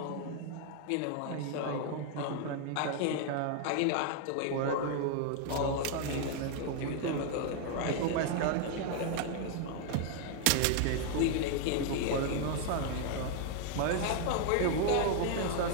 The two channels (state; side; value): different; both; correlation 0.00